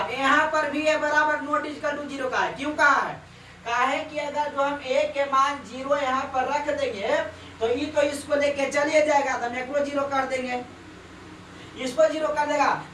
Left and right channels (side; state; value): both; identical; correlation 1.00